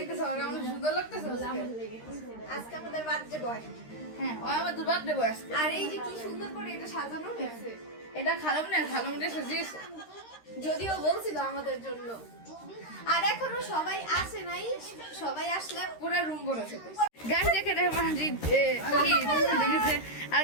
আমরা সুন্দর লাগতেছে আজকে আমাদের বার্থডে বয়। হ্যাঁ, ওই আমাদের বার্থডে বয়। আর এই যে কি সুন্দর করে এটা সাজানো হয়েছে। এটা খালামনে সাজিয়েছে। যদিও বলছিল আমাদের জন্য। আর এখনো সবাই আসে নাই, সবাই আসলে পুরো রুম ভরেছে। গাইস দেখে মাহাদি কি আর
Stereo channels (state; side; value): late; right; 13 ms